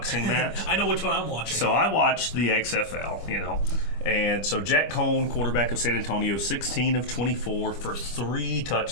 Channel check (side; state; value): right; late; 25 ms